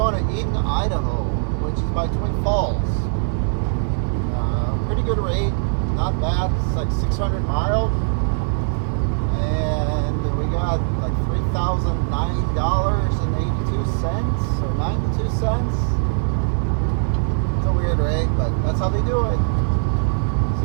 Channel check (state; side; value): silent; left; digital silence